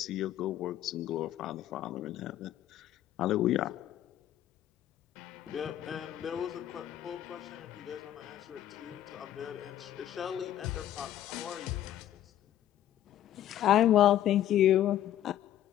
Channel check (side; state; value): right; quieter; 11.9 dB